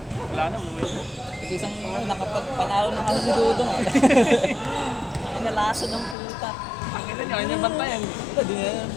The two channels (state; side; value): drops out; right; at 6.2 s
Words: Wala na, umuwi na. Kasi isang nakapagpanalo na kasi si Dudong. Ay, nalasa ng puta. Ang ina niya, kanya bantayan. Ito, di na